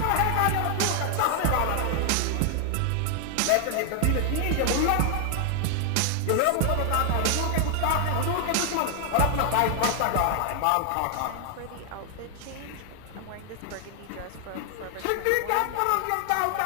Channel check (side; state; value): both; different; correlation 0.00